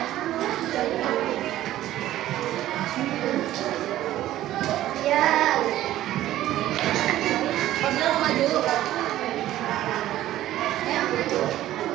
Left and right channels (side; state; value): left; quieter; 13.9 dB